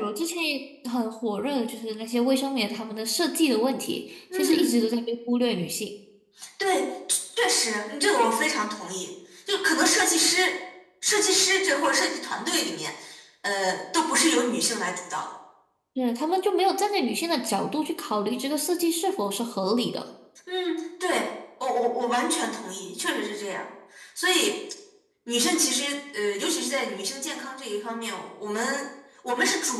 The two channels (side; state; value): both; identical; correlation 1.00